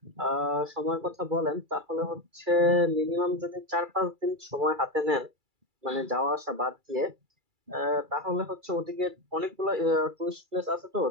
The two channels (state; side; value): late; left; 2.3 ms